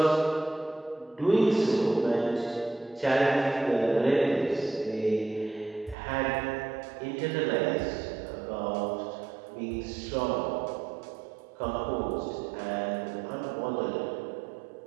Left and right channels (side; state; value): left; drops out; at 6.0 s